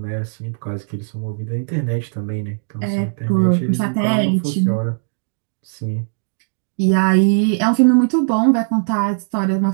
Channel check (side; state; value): left; silent; digital silence